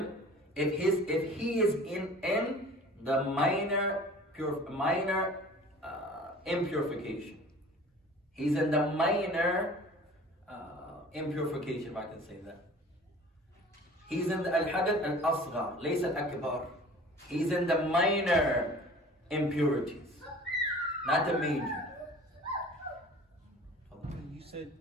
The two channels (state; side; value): normal; both; correlation 0.44